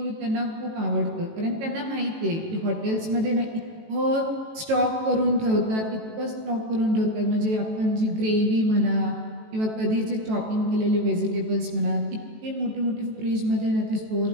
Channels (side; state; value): left; late; 18 ms